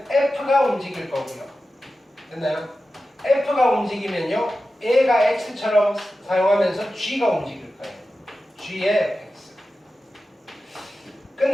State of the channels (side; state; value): both; normal; correlation 0.93